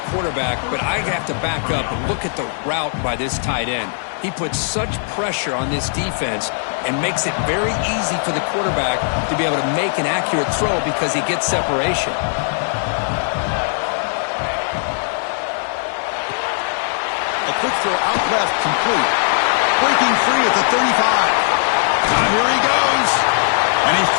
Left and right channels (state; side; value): silent; right; 66 dB below the other